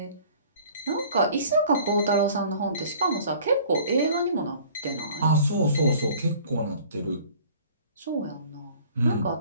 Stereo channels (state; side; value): inverted; both; correlation -0.50